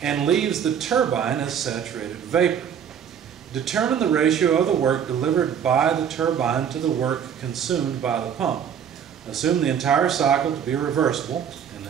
and leaves the turbine as saturated vapor. Determine the ratio of the work delivered by the turbine to the work consumed by the pump. Assume the entire cycle to be reversible and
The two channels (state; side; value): quieter; left; 8.2 dB